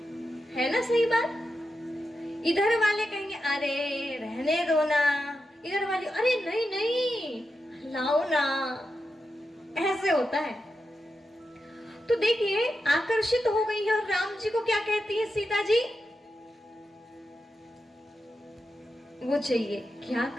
ना? सही बात। इधर वाले कहेंगे अरे रहने दो ना, इधर वाले अरे नहीं नहीं लाओ ना, ऐसे होता है। तो देखिए, आकर्षित हो गई है और राम जी को क्या कहती है सीता जी? वो चाहिए। क्या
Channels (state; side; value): normal; both; correlation 0.88